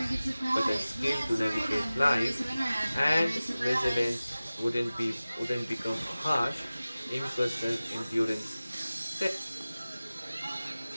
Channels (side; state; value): both; inverted; correlation -0.97